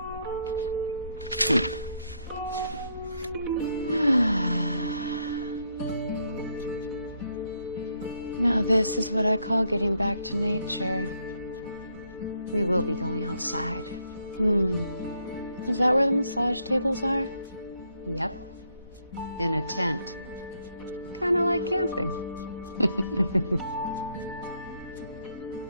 Now this is what I call getting back to nature. We will be going outside. Is that where the massage tables are? Yep. In a tent. Kind of like camping.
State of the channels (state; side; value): inverted; both; correlation -0.75